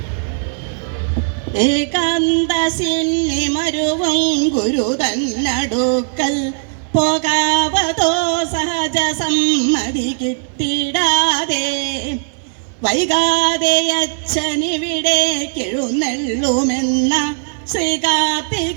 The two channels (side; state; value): left; silent; digital silence